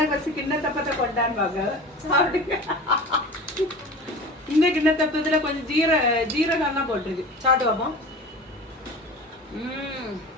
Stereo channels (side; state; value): both; normal; correlation 0.36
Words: வச்சு கிண்ணத்தப்பத்தை கொண்டாடுவாங்க. சாப்பிடுங்க. இந்த கிண்ணத்தப்பத்துல கொஞ்சம் ஜீரகம் தான் போட்டிருக்கு. சாப்பிட்டு பார்ப்போம்.